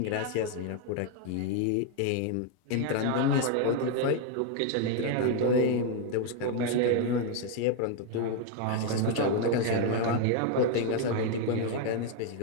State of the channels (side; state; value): both; different; correlation 0.00